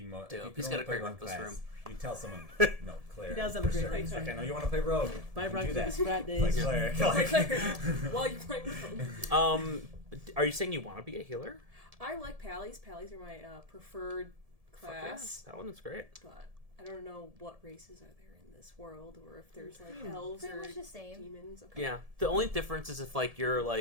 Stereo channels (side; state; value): left; late; 1.7 ms